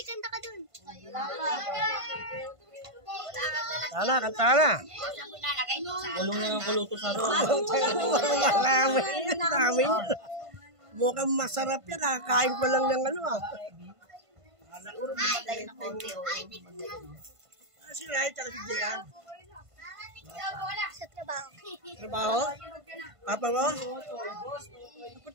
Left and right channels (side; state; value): left; late; 1.5 ms